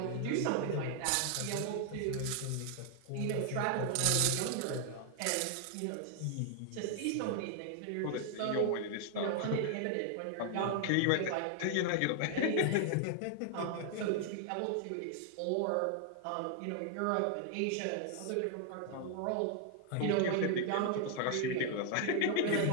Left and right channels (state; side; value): different; both; correlation 0.00